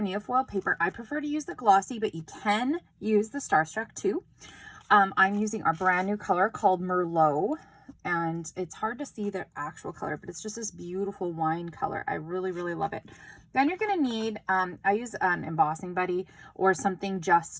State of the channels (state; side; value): identical; both; correlation 1.00